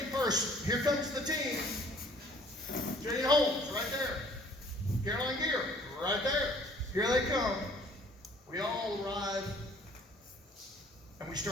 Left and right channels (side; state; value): both; normal; correlation 0.56